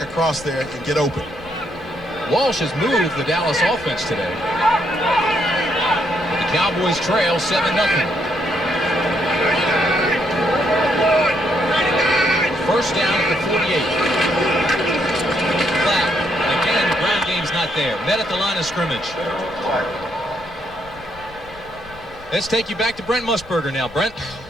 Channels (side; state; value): left; noise; rumble, 21 dB below the sound